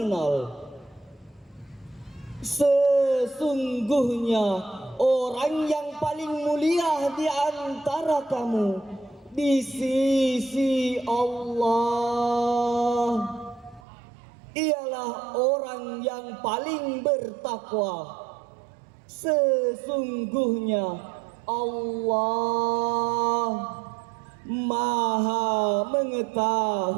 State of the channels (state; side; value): drops out; left; at 13.8 s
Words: Sesungguhnya orang yang paling mulia di antara kamu di sisi Allah ialah orang yang paling bertakwa. Sesungguhnya Allah maha